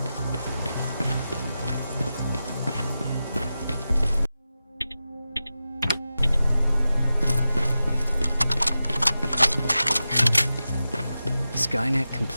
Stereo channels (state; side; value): inverted; both; correlation -0.92